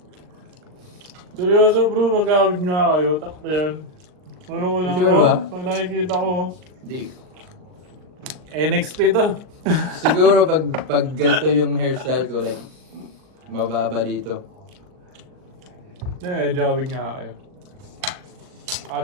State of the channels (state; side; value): late; left; 39 ms